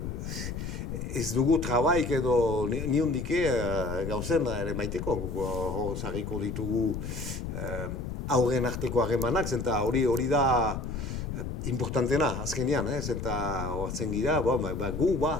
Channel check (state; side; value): noise; left; rumble, 5 dB below the sound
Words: ez dugu trabaik edo niondike gauzen ere maiteko, zarriko ditugu aurren arteko harremanak, zenta hori da importantena azkenean, zenta hortzen gira, gu,